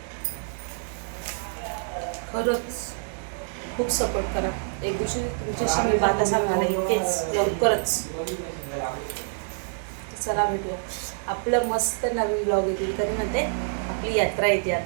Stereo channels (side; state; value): left; silent; digital silence